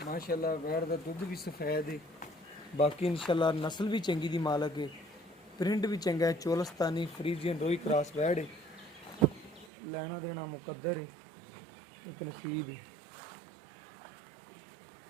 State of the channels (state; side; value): drops out; left; at 9.7 s